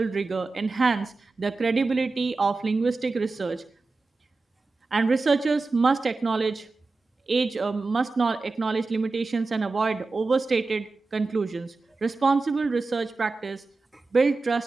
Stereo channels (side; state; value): left; quieter; 3.7 dB